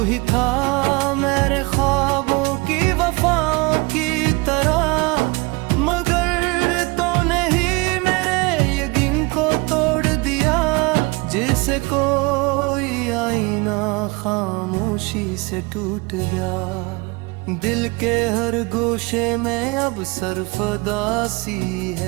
ही था मेरे ख्वाबों की वफाओं की तरह, मगर तूने ही मेरे यकीन को तोड़ दिया, जिसे कोई आईना खामोशी से टूट गया। दिल के हर गोशे में अब सरफदासी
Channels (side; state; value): left; quieter; 26.2 dB